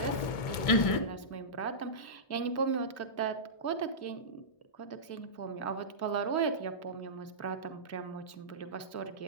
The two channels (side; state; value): right; late; 1.7 ms